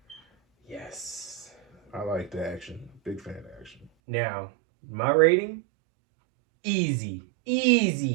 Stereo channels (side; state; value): left; drops out; at 3.9 s